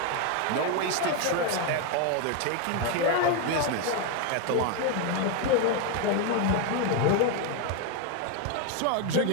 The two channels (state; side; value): different; both; correlation 0.01